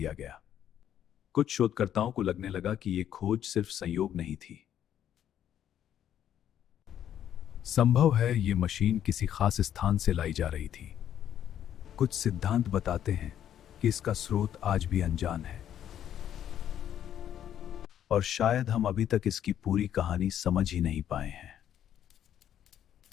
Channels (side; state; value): right; quieter; 10.4 dB